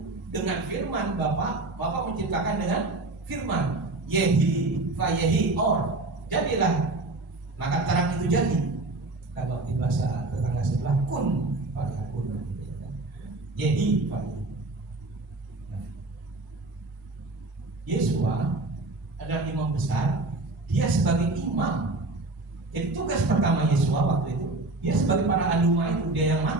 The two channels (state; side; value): quieter; left; 3.1 dB